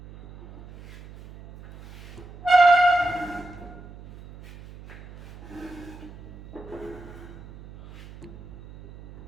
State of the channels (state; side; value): noise; right; hum, 18 dB below the sound